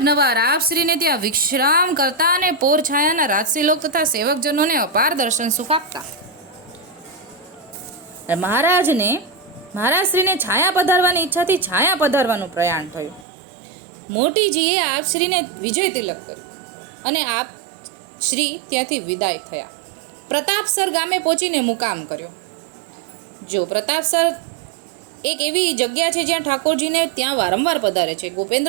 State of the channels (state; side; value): drops out; left; at 13.2 s